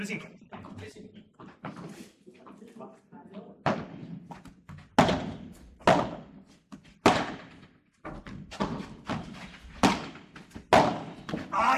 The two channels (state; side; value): identical; both; correlation 1.00